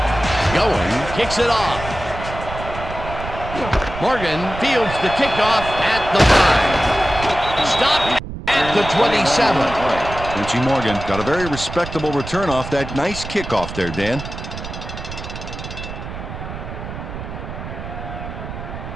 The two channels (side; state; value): right; noise; rumble, 9 dB below the sound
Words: Going, kicks it off. Morgan fields the kickoff at the 5. Stopped at the 27. Quincy Morgan got a very respectable return off that nice kickoff there, Dan.